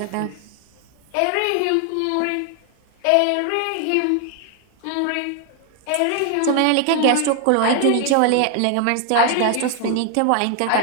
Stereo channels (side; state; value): both; different; correlation 0.00